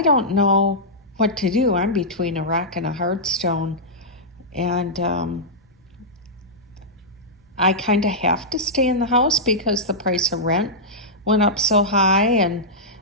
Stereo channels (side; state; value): both; normal; correlation -0.11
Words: don't know what to do. I'm between a rock and a hard stone, and I kind of have to stay in the house because the price of rent went up so high, and